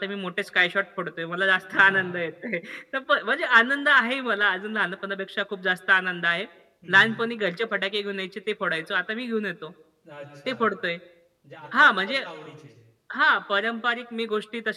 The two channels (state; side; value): identical; both; correlation 1.00